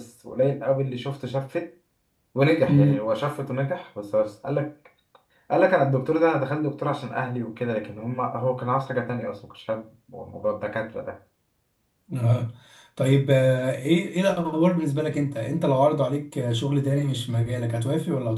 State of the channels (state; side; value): identical; both; correlation 1.00